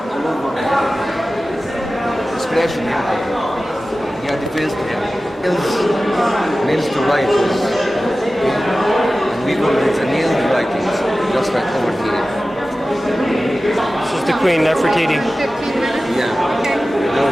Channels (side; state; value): both; normal; correlation 0.95